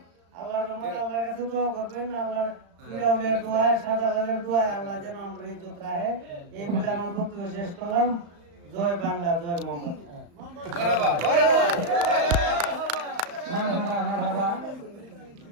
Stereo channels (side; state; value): left; late; 35 ms